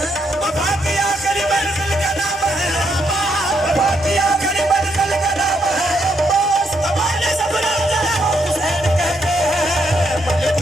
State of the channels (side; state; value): both; normal; correlation 0.77